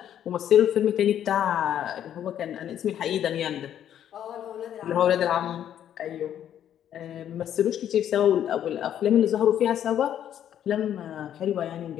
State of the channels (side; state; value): right; quieter; 10.3 dB